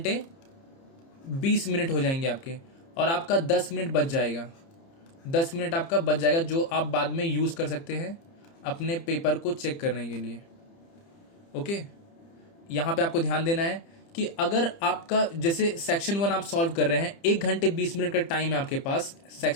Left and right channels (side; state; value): right; late; 30 ms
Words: 20 मिनट हो जाएंगे आपके, और आपका 10 मिनट बच जाएगा। 10 मिनट आपका बच जाएगा जो आप बाद में यूज कर सकते हैं अपने पेपर को चेक करने के लिए। ओके, यहां पे आपको ध्यान देना है कि अगर आपका जैसे सेक्शन 1 आप सॉल्व कर रहे हैं, 1 घंटे 20 मिनट का टाइम है आपके पास